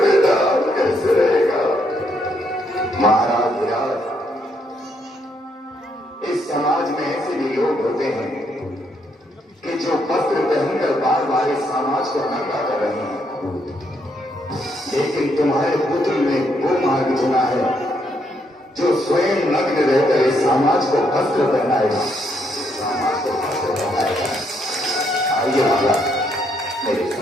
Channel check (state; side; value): normal; both; correlation 0.74